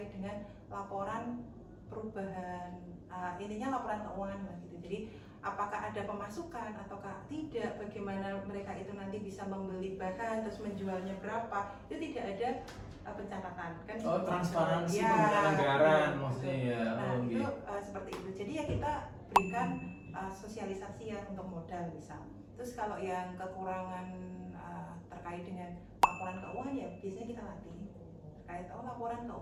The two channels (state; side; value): identical; both; correlation 1.00